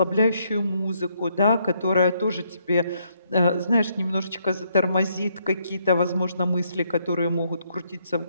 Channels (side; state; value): both; inverted; correlation -0.73